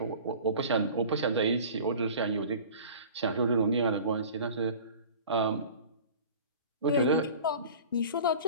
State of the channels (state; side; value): inverted; both; correlation -0.41